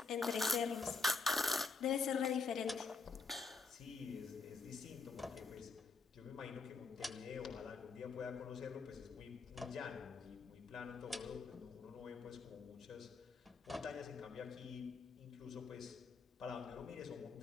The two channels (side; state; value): right; quieter; 4.5 dB